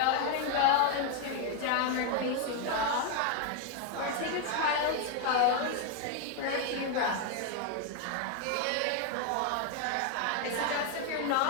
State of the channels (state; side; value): different; both; correlation 0.01